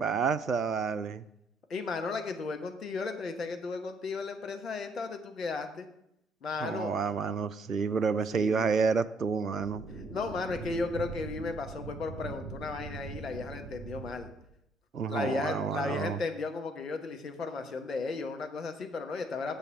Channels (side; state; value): both; normal; correlation 0.66